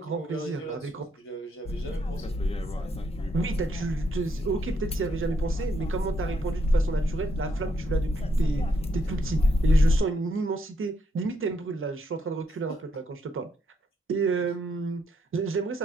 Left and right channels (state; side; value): normal; both; correlation 0.75